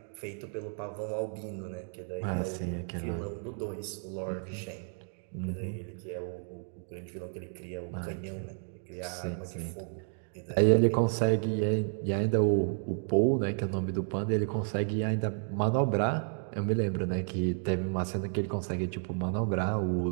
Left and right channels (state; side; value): silent; left; 56 dB below the other